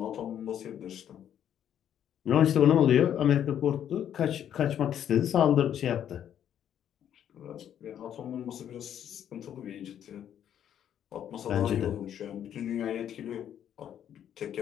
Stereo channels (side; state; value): right; quieter; 9.9 dB